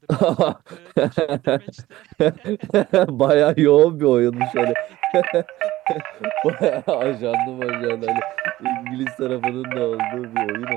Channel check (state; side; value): quieter; left; 16.3 dB